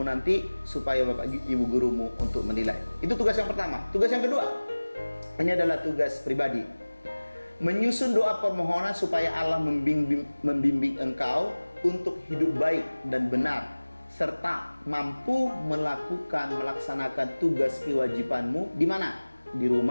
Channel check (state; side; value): inverted; both; correlation -1.00